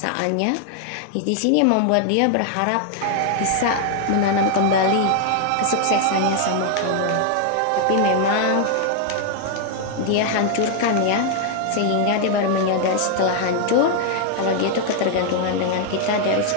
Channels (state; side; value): different; both; correlation 0.00